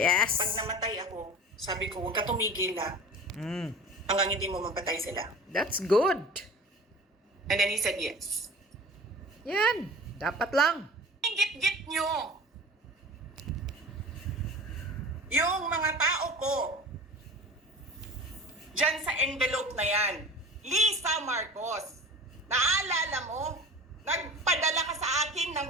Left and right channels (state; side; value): normal; both; correlation 0.38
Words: Pag namatay ako, sabi ko, huwag ka tumigil ha. Mm. Hanggang hindi mo mapatay sila. That's good. And then he said yes. Yan. Dapat lang. Git-git nyo. Yung mga tao ko, dyan sa envelope na yan, Lisa Marcos, naalala mo, nagpadala ka sa akin ng